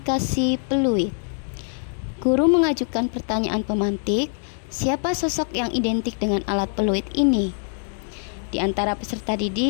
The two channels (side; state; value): right; silent; 59 dB below the other